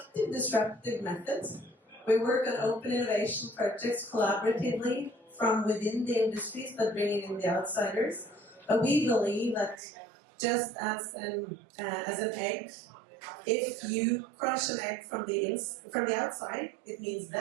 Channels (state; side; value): drops out; left; at 9.8 s